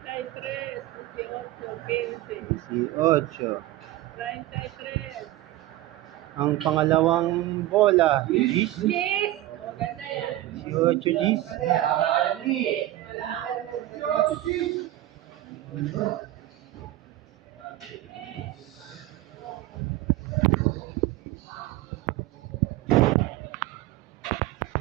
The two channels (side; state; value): left; quieter; 15.4 dB